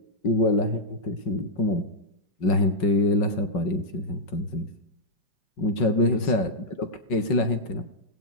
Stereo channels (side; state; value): right; late; 5.4 ms